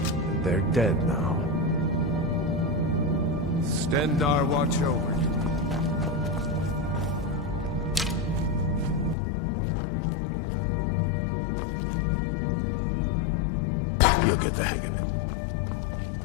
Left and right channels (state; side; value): drops out; right; at 9.2 s